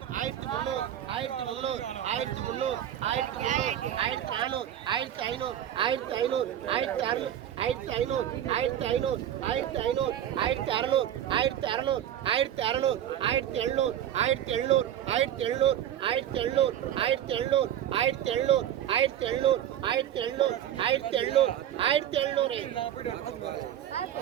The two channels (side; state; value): left; quieter; 11.0 dB